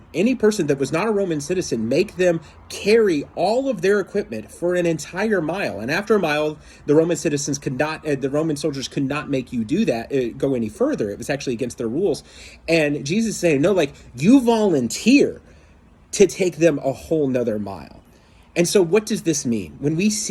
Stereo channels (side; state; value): both; identical; correlation 1.00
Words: that was not a Roman citizen, make them carry all of their equipment for an entire mile. And after a mile, the Roman citizens could not, the Roman soldiers could not make you do that, go any further. It was actually against their rules. And Jesus is saying, no, like you volunteer to take them a whole nother mile. And so what does this mean? When we